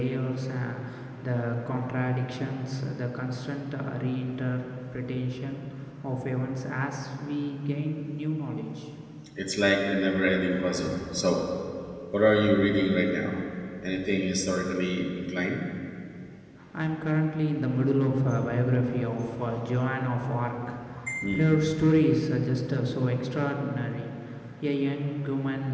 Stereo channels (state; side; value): identical; both; correlation 1.00